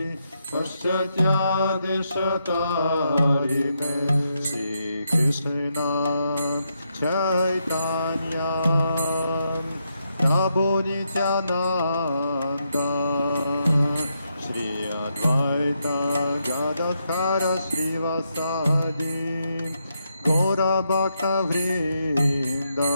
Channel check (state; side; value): inverted; both; correlation -0.81